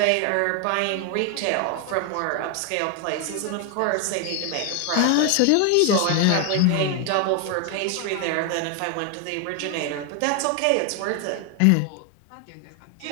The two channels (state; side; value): different; both; correlation 0.01